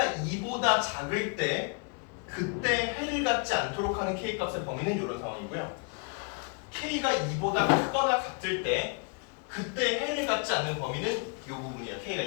2보다 작을 때 그때 해를 갖지 않도록 하는 k 값의 범위는 이런 상황이고요. k가 2보다 크거나 같을 때 그때 해를 갖지 않는 범위는 이 부분이야. k가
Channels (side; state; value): right; quieter; 36.9 dB